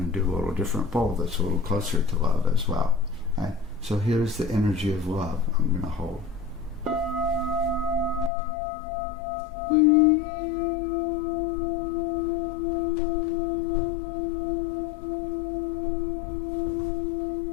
going to do a little different bowl that's a little closer to love as well. Right? So here's the energy of love I'm going to hold.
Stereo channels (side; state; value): right; drops out; at 8.3 s